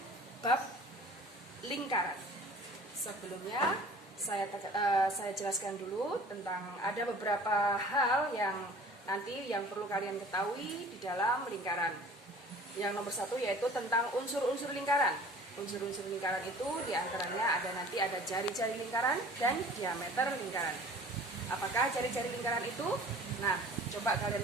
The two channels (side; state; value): both; normal; correlation 0.47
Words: bab lingkaran. Sebelumnya saya jelaskan dulu tentang ada beberapa hal yang nanti yang perlu kalian ketahui di dalam lingkaran. Yang nomor satu yaitu tentang unsur-unsur lingkaran. Unsur-unsur lingkaran itu diantaranya ada jari-jari lingkaran dan diameter lingkaran. Apakah jari-jari lingkaran itu? Nah, coba kalian